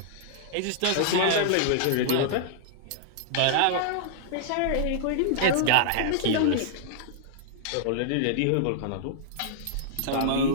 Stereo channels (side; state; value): both; different; correlation -0.02